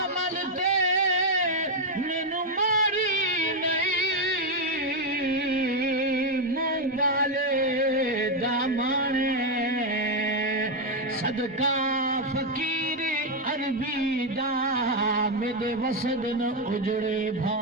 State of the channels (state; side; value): normal; both; correlation 0.04